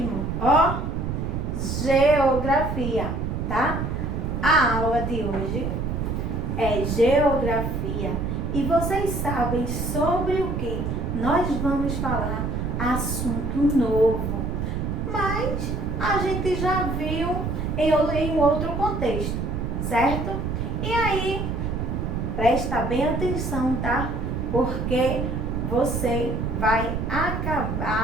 Ó, geografia, tá? A aula de hoje é geografia e vocês sabem sobre o que nós vamos falar? Assunto novo, mas a gente já viu em outro contexto, certo? E aí, presta bem atenção, tá? Porque você vai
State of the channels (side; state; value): right; noise; rumble, 2 dB below the sound